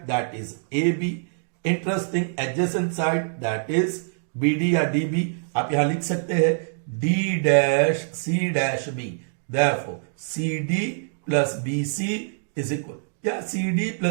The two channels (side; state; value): left; silent; digital silence